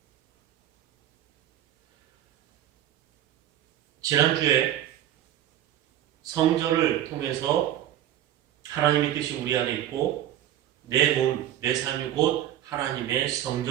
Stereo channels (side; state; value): left; quieter; 12.1 dB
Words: 지난주에 성전을 통해서 하나님의 뜻이 우리 안에 있고 내 몸, 내 삶이 곧 하나님의